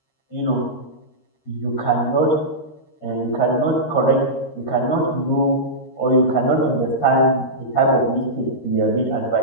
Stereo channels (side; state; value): right; late; 13 ms